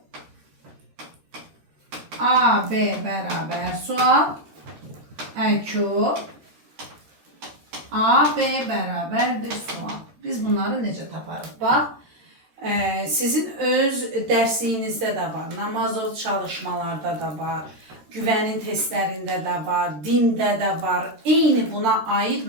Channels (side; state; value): left; late; 13 ms